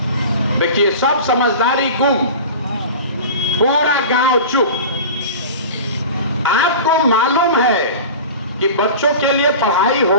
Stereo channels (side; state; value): both; inverted; correlation -0.35